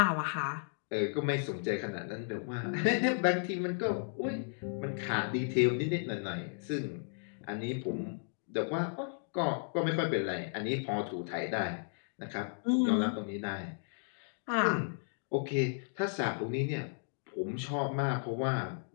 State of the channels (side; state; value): right; silent; digital silence